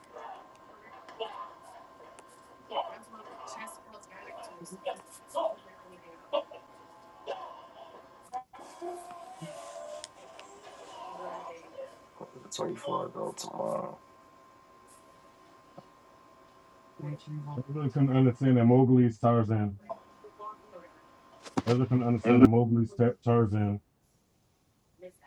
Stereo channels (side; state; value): both; identical; correlation 1.00